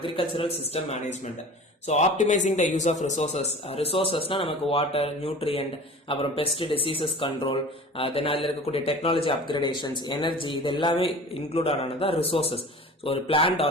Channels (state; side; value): normal; both; correlation 0.40